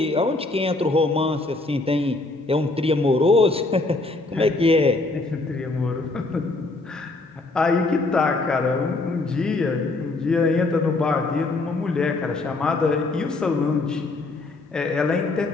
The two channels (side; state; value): right; quieter; 3.2 dB